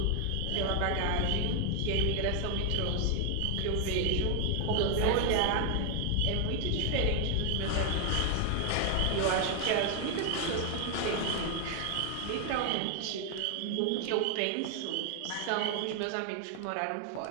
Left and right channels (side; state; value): both; different; correlation 0.00